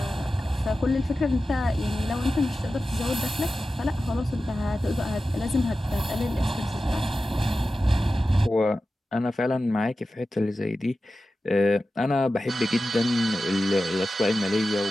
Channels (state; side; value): normal; both; correlation 0.93